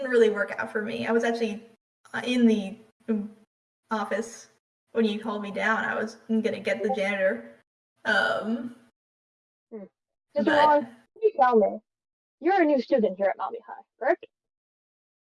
really work out for me. I was actually in the office when you called me down. I was gonna get the janitor. Mr. But Wong, can you tell me? You're a new student here at Malamute High, correct?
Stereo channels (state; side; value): identical; both; correlation 1.00